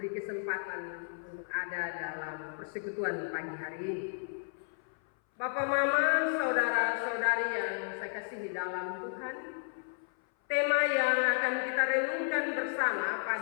kesempatan untuk ada dalam persekutuan pagi hari ini. Bapak Mama, saudara-saudari yang saya kasihi dalam Tuhan, tema yang akan kita renungkan bersama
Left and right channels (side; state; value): right; silent; 56 dB below the other